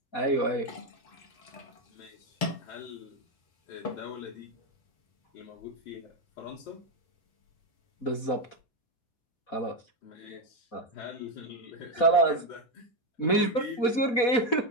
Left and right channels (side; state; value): right; late; 4.1 ms